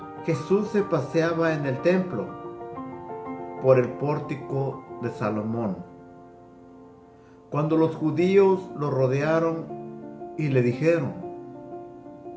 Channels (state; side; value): identical; both; correlation 1.00